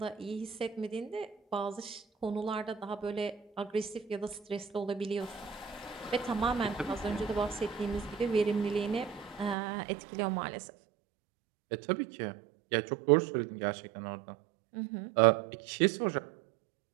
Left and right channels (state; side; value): drops out; left; at 9.6 s